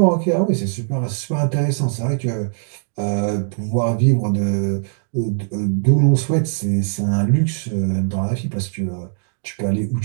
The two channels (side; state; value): left; silent; digital silence